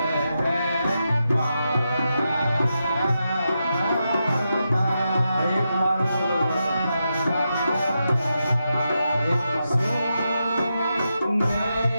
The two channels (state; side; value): inverted; both; correlation -0.86